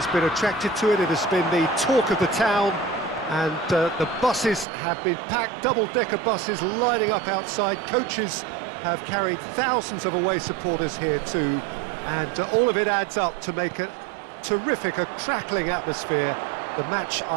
been attracted to it. It has been the talk of the town, and the buses have been packed, double-decker buses lining up outside. Coaches have carried thousands of away supporters here too, and all of it adds up to make a terrific, a crackling atmosphere. The match,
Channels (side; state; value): left; drops out; at 4.7 s